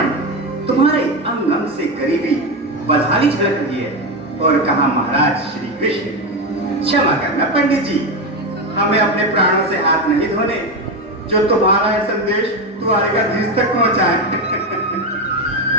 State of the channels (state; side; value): normal; both; correlation 0.14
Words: तुम्हारे अंग अंग से गरीबी बदहाली झलक रही है। और कहा महाराज श्री कृष्ण। क्षमा करना पंडित जी, हमें अपने प्राणों से हाथ नहीं धोने जो तुम्हारा यह संदेश द्वारकाधीश तक पहुंचाए।